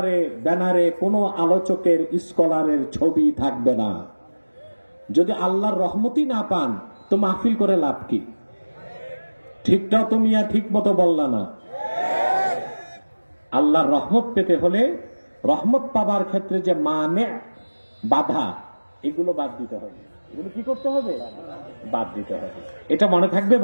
ব্যানারে কোন আলোচকের, স্কলারের ছবি থাকবে না। যদি আল্লাহর রহমতই না পান তো মাহফিল করে লাভ কি? ঠিকটাও তুমি ঠিক মতো বললা না। আল্লাহর রহমত পেতে হলে, রহমত পাবার ক্ষেত্রে যে মানে বাধা, এগুলো বাদ দিতে হবে। এগুলো কি করতে হবে? বাদ দিতে হবে। এটা মনে থাকবে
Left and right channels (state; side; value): inverted; both; correlation -1.00